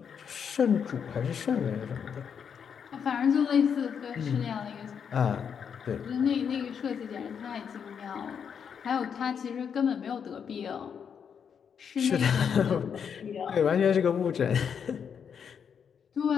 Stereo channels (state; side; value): quieter; right; 7.2 dB